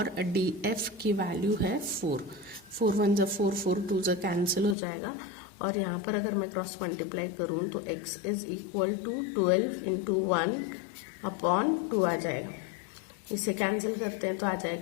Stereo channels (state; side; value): drops out; right; at 4.8 s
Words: DF की वैल्यू है 4। 4 1 ज़ा 4, 4 2 ज़ा कैंसिल हो जाएगा और यहाँ पर अगर मैं क्रॉस मल्टीप्लाई करूँ तो x is equal to 12 into 1 upon 2 आ जाएगा। इसे कैंसिल करते हैं तो आ